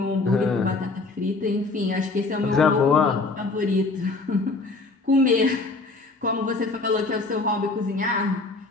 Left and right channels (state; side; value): quieter; right; 3.6 dB